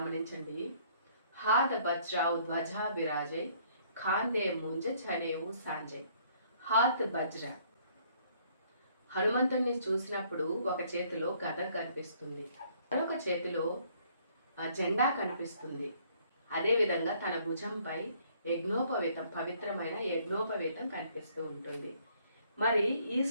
హాద బజ్రావు ధ్వజా విరాజై ఖాందే ముంజ చనేవు సాంజయ్. హాత్ బజ్ర, హనుమంతుడిని చూసినప్పుడు ఒక చేతిలో గద కనిపిస్తుంది, మరొక చేతిలో జెండా కనిపిస్తుంది. అదేవిధంగా తన భుజంపై యజ్ఞోపవీతం, పవిత్రమైన యజ్ఞోపవీతం కనిపిస్తూ ఉంటుంది. మరి ఈ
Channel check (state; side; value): inverted; both; correlation -0.62